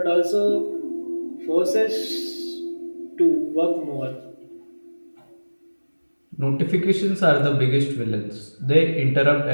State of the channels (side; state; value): both; inverted; correlation -1.00